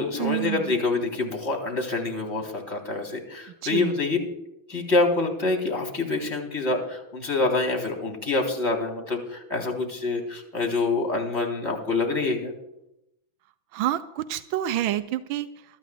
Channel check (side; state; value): left; late; 6.1 ms